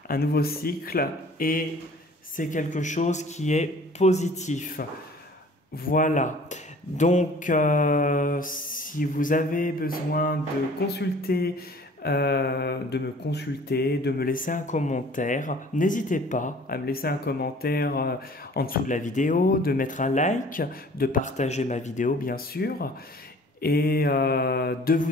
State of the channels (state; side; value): normal; both; correlation 0.50